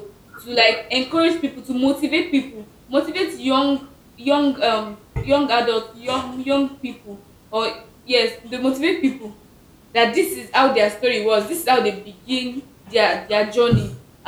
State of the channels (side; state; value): both; identical; correlation 1.00